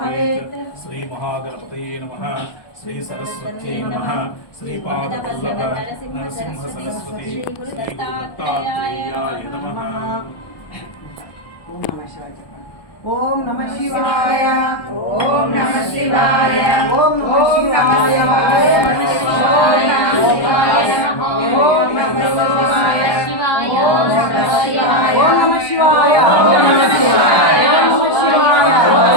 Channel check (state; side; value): late; right; 1.2 ms